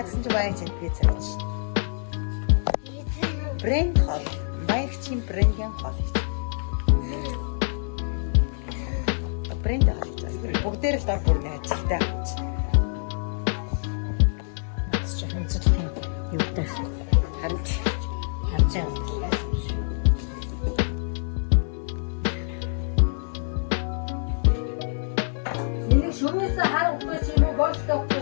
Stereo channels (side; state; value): right; silent; digital silence